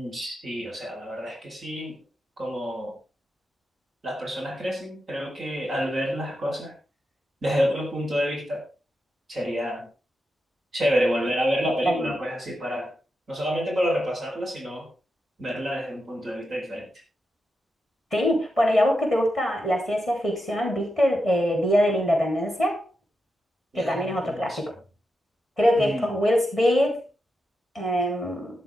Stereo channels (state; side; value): normal; both; correlation 0.87